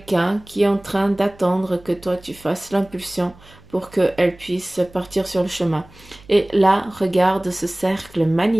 qui est en train d'attendre que toi tu fasses l'impulsion pour qu'elle puisse partir sur le chemin. Et là, regarde ce cercle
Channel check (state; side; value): noise; right; hum, 24 dB below the sound